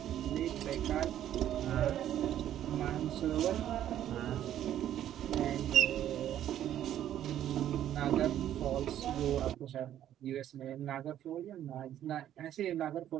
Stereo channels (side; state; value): left; quieter; 11.4 dB